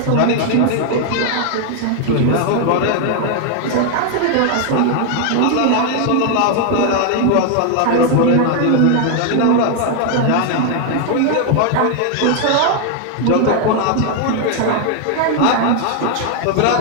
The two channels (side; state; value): both; different; correlation 0.00